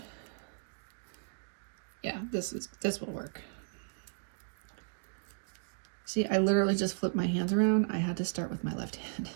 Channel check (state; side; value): silent; left; digital silence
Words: Yeah, this will work. See, I literally just flipped my hands around. I had to start with my left hand.